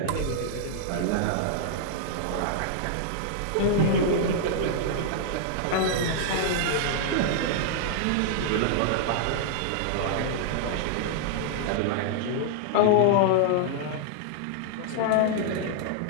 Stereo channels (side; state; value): both; different; correlation -0.01